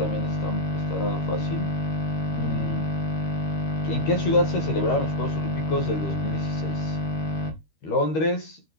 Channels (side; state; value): right; late; 13 ms